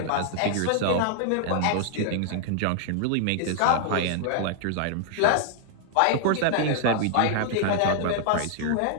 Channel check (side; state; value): both; different; correlation 0.00